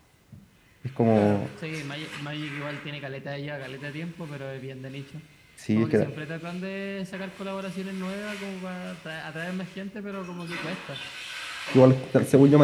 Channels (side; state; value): both; identical; correlation 1.00